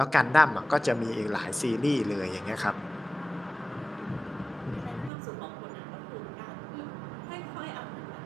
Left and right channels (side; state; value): left; drops out; at 5.1 s